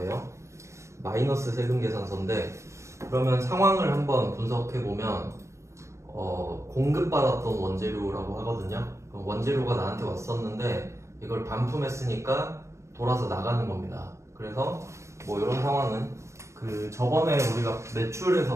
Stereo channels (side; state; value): left; late; 0.14 ms